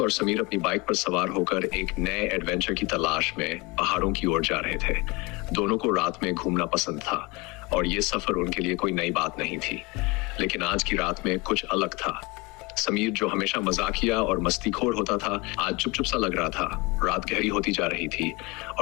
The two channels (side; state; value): right; quieter; 25.7 dB